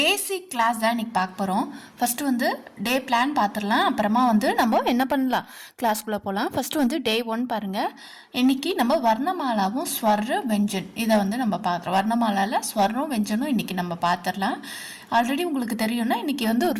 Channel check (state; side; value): identical; both; correlation 1.00